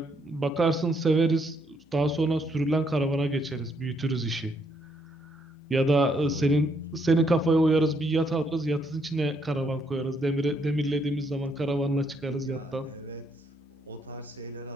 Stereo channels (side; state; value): both; normal; correlation 0.73